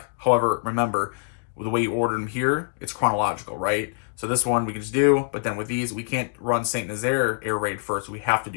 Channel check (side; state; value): right; silent; digital silence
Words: However, remember, the way you order them here, it's chronological, right? So this one we can just do, but then with these, we can't run Saint Nazaire air raid first. We have to